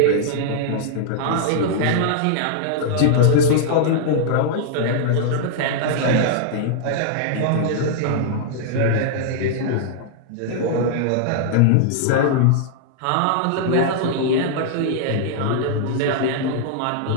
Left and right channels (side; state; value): both; different; correlation -0.01